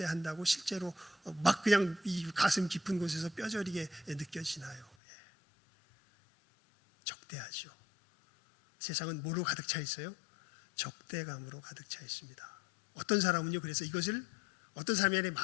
실제로 막 그냥 이 가슴 깊은 곳에서 뼈저리게 느껴지나요? 적대하죠. 세상은 뭐로 가득 차 있어요? 적대감으로 가득 차 있습니다. 어떤 사람은요, 그래서 이것을, 어떤 사람이 아니라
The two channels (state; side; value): drops out; right; at 5.0 s